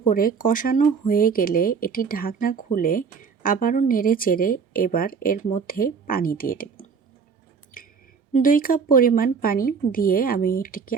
করে কষানো হয়ে গেলে এটি ঢাকনা খুলে আবারও নেড়েচেড়ে এবার এর মধ্যে পানি দিয়ে দেব। 2 কাপ পরিমাণ পানি দিয়ে আমি এটিকে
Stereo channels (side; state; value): left; quieter; 5.9 dB